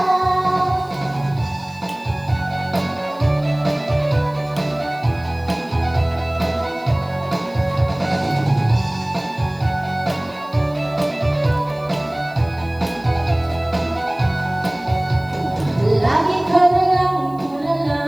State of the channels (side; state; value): left; noise; hiss, 28 dB below the sound